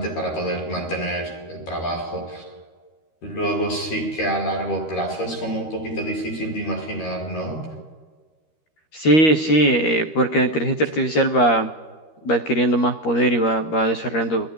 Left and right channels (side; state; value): right; late; 13 ms